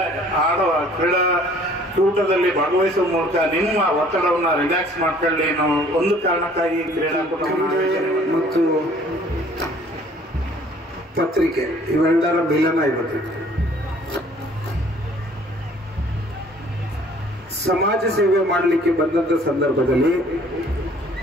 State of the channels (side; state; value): both; normal; correlation 0.55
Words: ಕ್ರೀಡಾಕೂಟದಲ್ಲಿ ಭಾಗವಹಿಸುವ ಮೂಲಕ ನಿಮ್ಮ ಒತ್ತಡವನ್ನು ರಿಲ್ಯಾಕ್ಸ್ ಮಾಡ್ಕೊಳ್ಳಿ. ನಾವು ಒಂದು ಕಾರಣಕ್ಕಾಗಿ ಕ್ರೀಡಾಕೂಟ ಮತ್ತು ಪತ್ರಿಕೆ ಇವೆಲ್ಲರ ಮಿಲನ ಇವತ್ತು. ಸಮಾಜ ಸೇವೆ ಮಾಡಲಿಕ್ಕೆ ಬಂದಂತ ಸಂದರ್ಭದಲ್ಲಿ